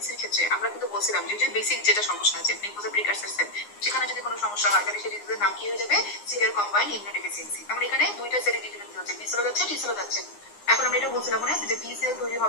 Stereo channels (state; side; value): late; right; 9.7 ms